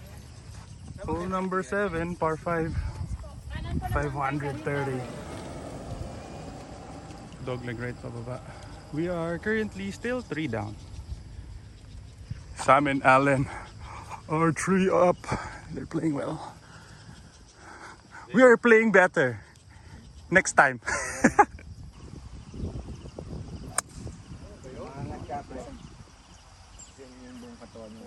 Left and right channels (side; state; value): both; identical; correlation 1.00